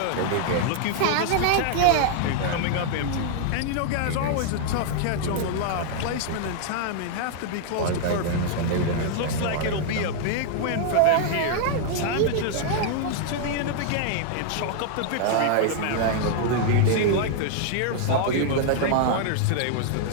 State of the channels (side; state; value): both; different; correlation -0.01